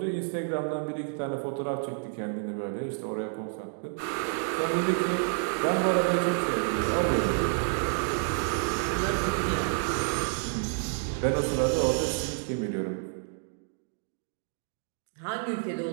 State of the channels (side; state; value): left; silent; 58 dB below the other